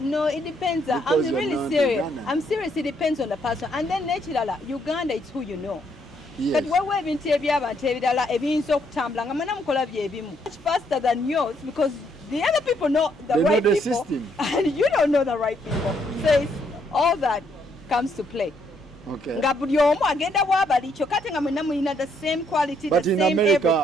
depends. Because I'm really serious. I'm serious. It depends on the person. And then naturally, Uganda is who you know. But we're much faster than yours because the other people know the right people system. And you don't know the right people. So it's all that comes to play. Okay. The same quality, but the in same America,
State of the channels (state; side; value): normal; both; correlation 0.72